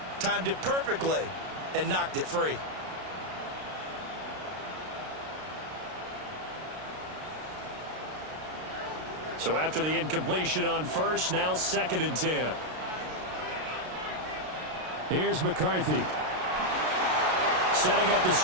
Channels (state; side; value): late; left; 33 ms